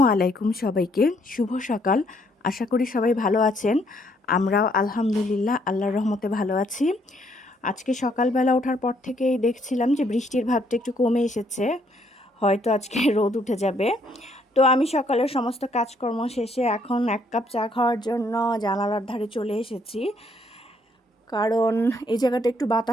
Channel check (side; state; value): both; normal; correlation 0.69